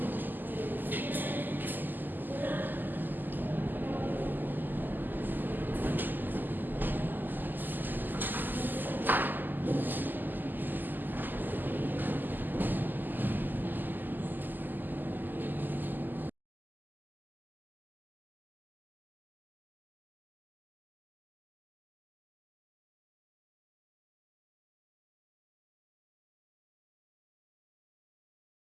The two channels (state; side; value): late; left; 0.088 ms